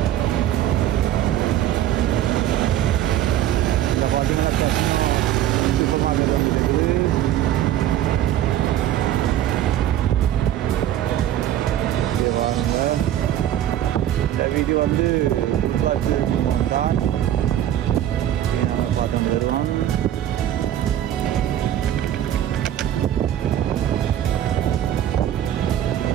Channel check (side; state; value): left; quieter; 11.7 dB